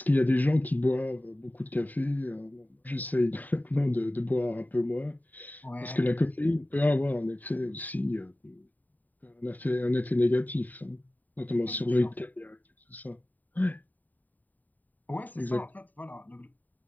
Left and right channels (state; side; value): late; right; 0.084 ms